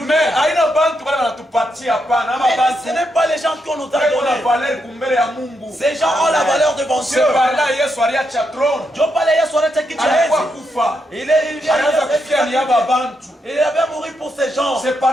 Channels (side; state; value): both; normal; correlation 0.81